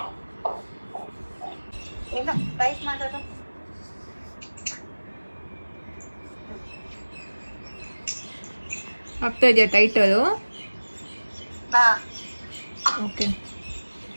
ಆಗ್ತಾ ಇದೆಯಾ ಟೈಟ್ ಅದು? ಓಕೆ.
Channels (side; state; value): both; inverted; correlation -1.00